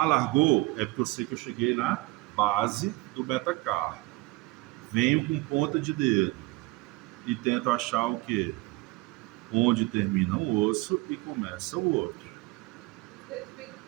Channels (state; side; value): quieter; left; 22.3 dB